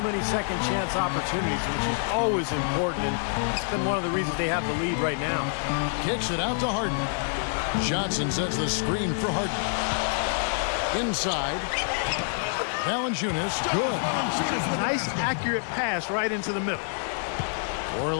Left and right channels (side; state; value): right; silent; digital silence